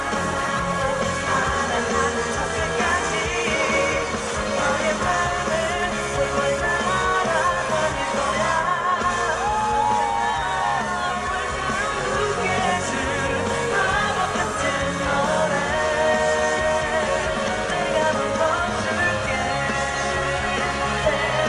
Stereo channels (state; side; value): identical; both; correlation 1.00